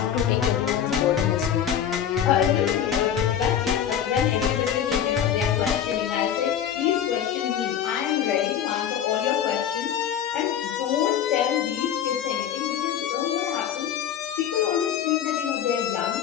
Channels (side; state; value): right; quieter; 9.3 dB